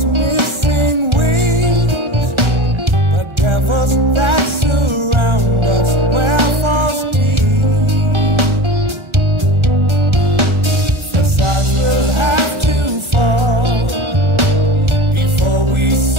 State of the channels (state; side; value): late; left; 1.4 ms